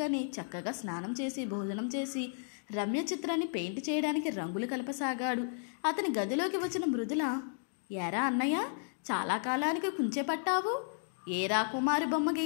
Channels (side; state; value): right; silent; digital silence